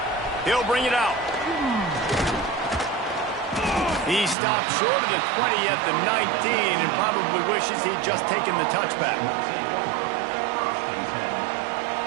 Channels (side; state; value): left; drops out; at 4.4 s